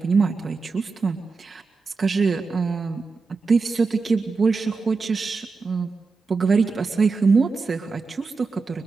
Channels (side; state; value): left; quieter; 4.4 dB